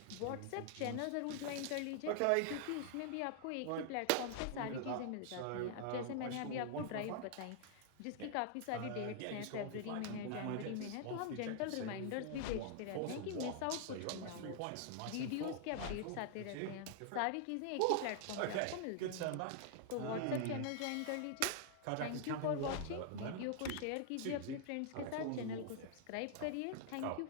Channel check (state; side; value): different; both; correlation 0.00